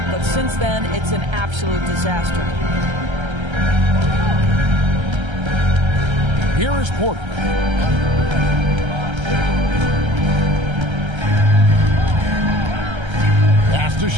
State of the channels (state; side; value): late; left; 1.3 ms